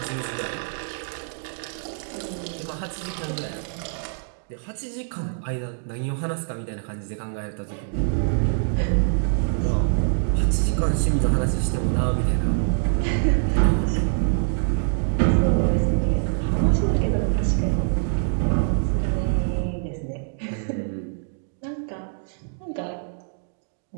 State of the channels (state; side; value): silent; left; digital silence